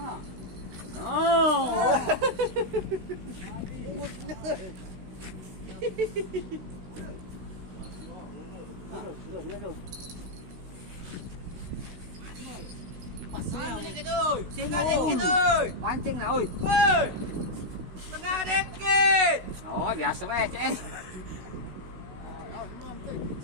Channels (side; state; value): left; late; 16 ms